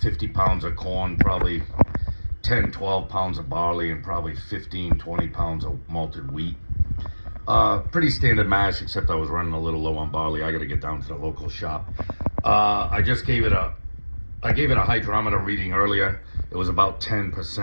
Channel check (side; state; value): both; inverted; correlation -1.00